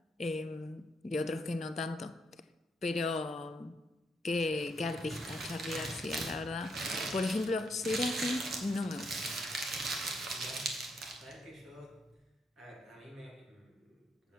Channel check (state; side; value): normal; both; correlation 0.76